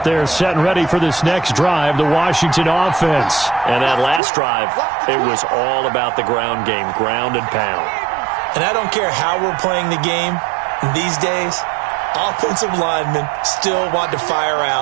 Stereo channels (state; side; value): drops out; left; at 4.2 s